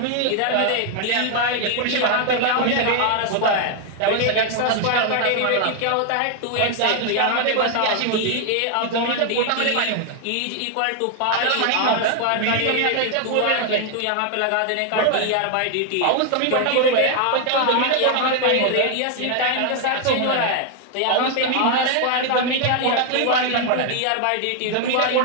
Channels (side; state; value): both; different; correlation 0.00